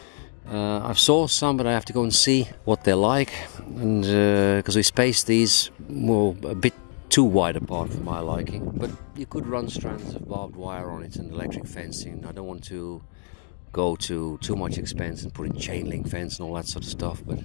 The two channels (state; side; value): silent; right; digital silence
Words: I've saw some, but I have to go and see what they're like, and because we spaced these a bit too wide apart for my liking. But you could run strands of barbed wire on it and electric fencing. I don't want to go to too much expense and put in chain link fence and all that sort of stuff, but